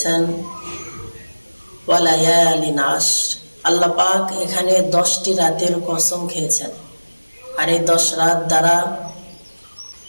ওয়া লায়ালিন আশর। আল্লাহ পাক এখানে 10টি রাতের কসম খেয়েছেন। আর এই 10 রাত দ্বারা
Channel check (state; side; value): inverted; both; correlation -1.00